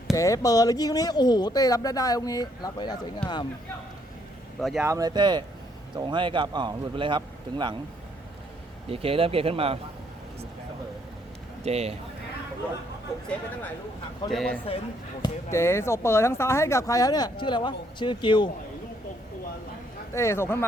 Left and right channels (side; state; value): both; normal; correlation 0.70